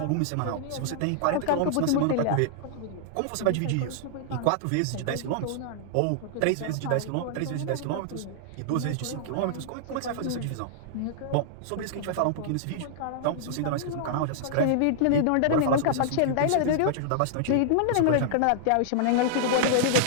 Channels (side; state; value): both; different; correlation -0.01